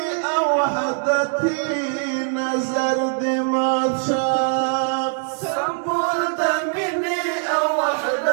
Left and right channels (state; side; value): silent; left; digital silence